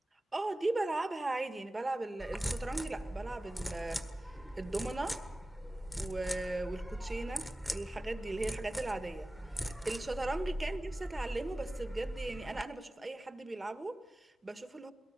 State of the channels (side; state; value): both; normal; correlation 0.97